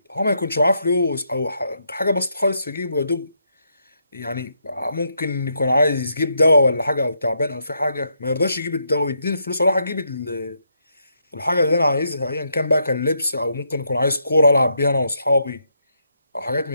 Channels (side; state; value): both; inverted; correlation -0.78